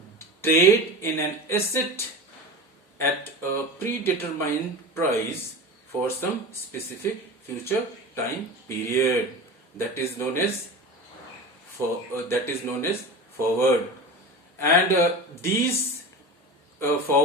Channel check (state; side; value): normal; both; correlation 0.31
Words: trade in an asset at a predetermined price for some specific future time period. That is known as forward. And these